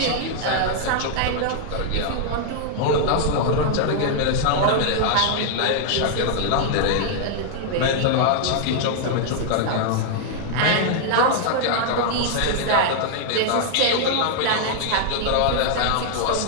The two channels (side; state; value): both; different; correlation -0.01